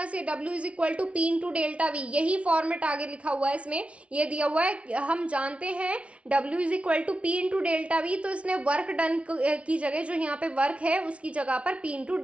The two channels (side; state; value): left; late; 0.062 ms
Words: से, W is equal to P into delta V, यही फॉर्मेट आगे लिखा हुआ है इसमें, ये दिया हुआ है। हम जानते हैं W is equal to P into delta V, तो इसने वर्क डन की जगह जो यहाँ पे वर्क है उसकी जगह पर P इंटू